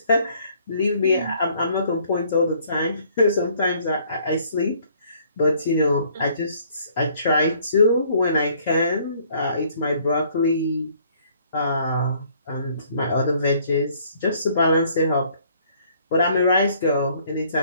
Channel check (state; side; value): inverted; both; correlation -0.62